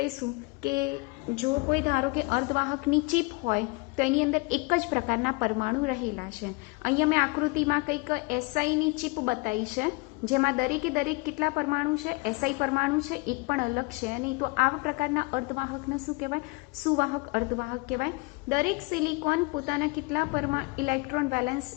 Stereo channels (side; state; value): right; quieter; 27.1 dB